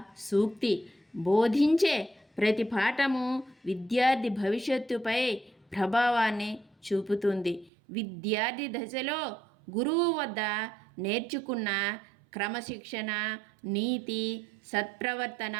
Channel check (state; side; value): drops out; left; at 7.7 s